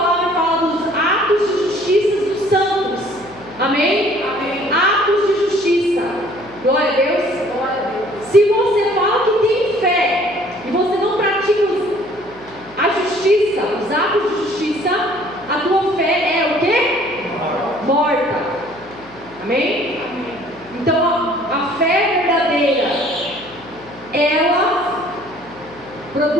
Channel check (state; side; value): noise; left; hum, 23 dB below the sound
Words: fala dos atos de justiça dos santos. Amém? Amém. Atos de justiça. Glória a Deus. Se você fala que tem fé e você não pratica a justiça, os atos de justiça, a tua fé é o quê? Morta. Amém? Então a fé verdadeira, ela